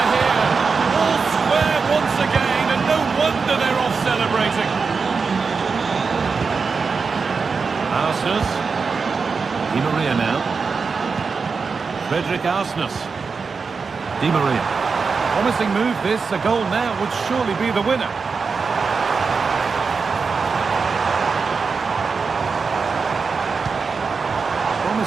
here. All square once again, and no wonder they're off celebrating. Arsenal. Di Maria now. Frederick Arsenis. Di Maria. Promising move this. A goal now would surely be the winner.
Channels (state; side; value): quieter; left; 5.0 dB